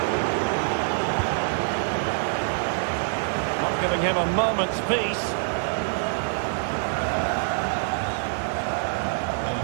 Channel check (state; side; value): silent; left; digital silence